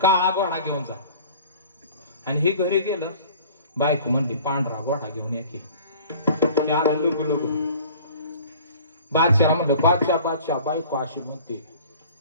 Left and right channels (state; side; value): inverted; both; correlation -0.46